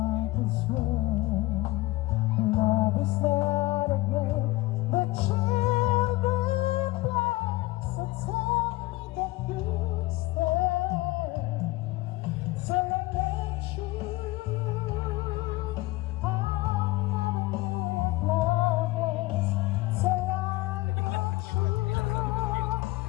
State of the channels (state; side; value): quieter; right; 19.8 dB